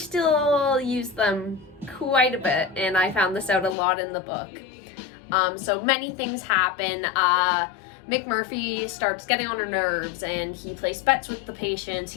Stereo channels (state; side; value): drops out; right; at 3.8 s